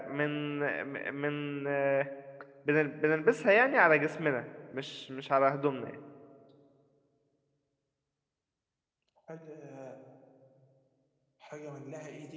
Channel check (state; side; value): identical; both; correlation 1.00